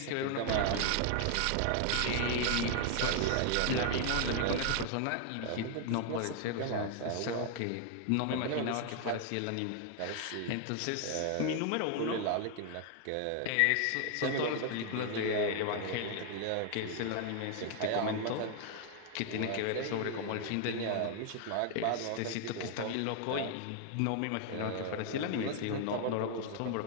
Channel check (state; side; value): different; both; correlation 0.00